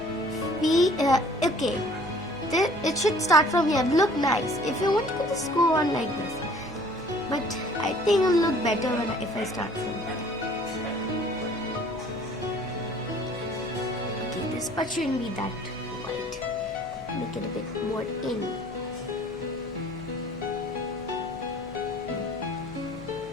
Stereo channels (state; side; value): noise; left; hum, 21 dB below the sound